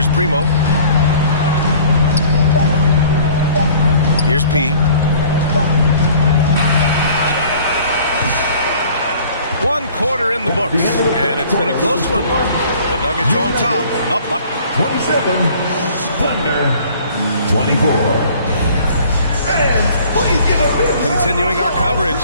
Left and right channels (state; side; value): inverted; both; correlation -0.51